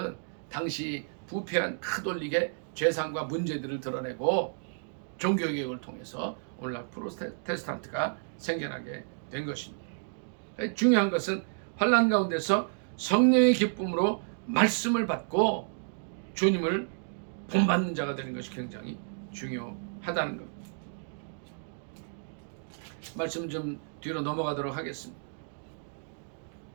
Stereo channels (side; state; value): left; silent; digital silence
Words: 당시 부패한 카톨릭의 죄상과 문제들을 드러내고 종교개혁을 통해서 오늘날 프로테스탄트가 생겨나게 된 것입니다. 중요한 것은 환난 가운데서 성령의 기쁨으로 말씀을 받고 주님을 본받는 자가 되는 것이 굉장히 중요하다는 겁니다. 말씀 좀 뒤로 넘어가도록 하겠습니다.